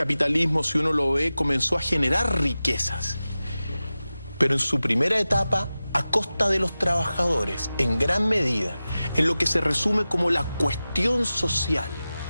si uno lo ve, comenzó a generar riquezas. Pero en su primera etapa, a costa de los trabajadores, en gran medida, en lo que se resume como la cuestión social.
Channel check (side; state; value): both; inverted; correlation -0.95